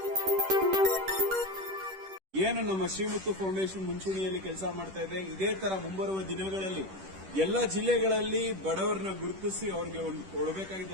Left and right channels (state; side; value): late; left; 10 ms